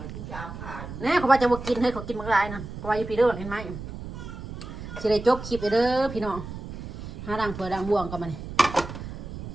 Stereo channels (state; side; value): noise; right; rumble, 10 dB below the sound